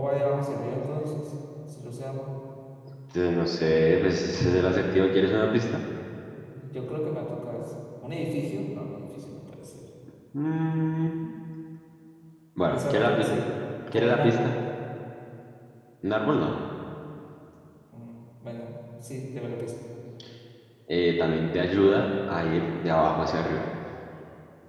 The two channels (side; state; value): both; identical; correlation 1.00